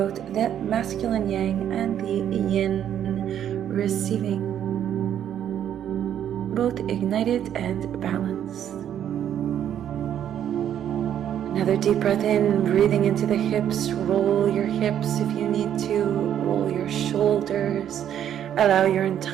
the masculine yang and the yin receiving, both ignited and balanced. Another deep breath in, breathing into the hips. Roll your hips if you need to. Roll your shoulders. Allow your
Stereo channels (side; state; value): left; quieter; 10.0 dB